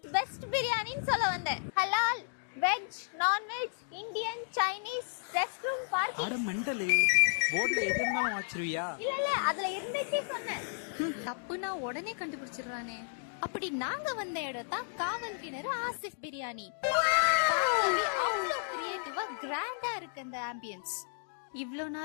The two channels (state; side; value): silent; right; digital silence